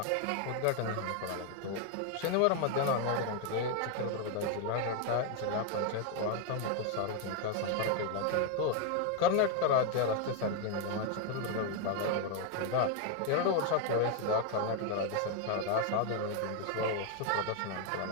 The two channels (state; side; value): different; both; correlation 0.01